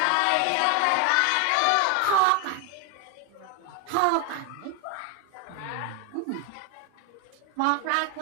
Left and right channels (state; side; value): different; both; correlation 0.01